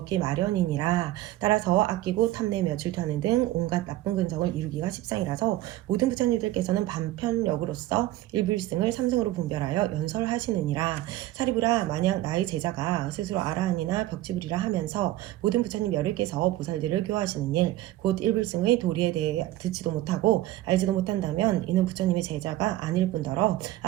마련이니라. 따라서 아끼고 탐내며 질투하는 등 온갖 나쁜 근성을 이루기가 십상이라서 모든 부처님들께서는 반편력으로서 일불승을 삼승으로 분별하여 연설하시느니라. 사리부라, 만약 나의 제자가 스스로 아라한이나 벽지불이라 하면서 모든 부처님 여러께서 보살들을 교화하시는 일, 곧 일불승의 도리에 대해 듣지도 못하고 알지도 못한다면 이는 부처님의 제자가 아닐 뿐더러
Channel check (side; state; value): left; quieter; 15.7 dB